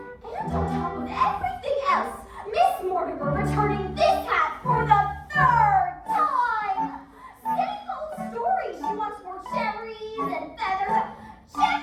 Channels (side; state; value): both; identical; correlation 1.00